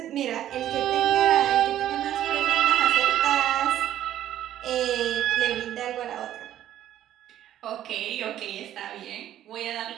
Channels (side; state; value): left; quieter; 11.9 dB